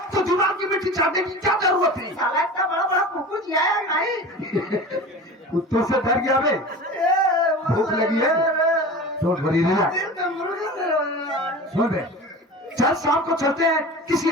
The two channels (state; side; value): normal; both; correlation 0.34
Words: तो दिमाग की मिट्टी चाटने की क्या जरूरत थी साला इतना बड़ा बड़ा कुकुर आया नहीं कुत्तों से डर गया बे भूख लगी है तो भरी नहीं सुन बे चल शाम को चलते हैं किसी